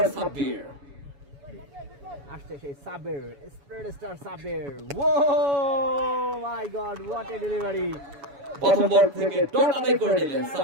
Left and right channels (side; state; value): left; late; 7.1 ms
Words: সাব্বির। আসছে সেই Saber, spread star Saber. Oh my god, what a delivery! প্রথম বল থেকে ডট আদায় করে নিলেন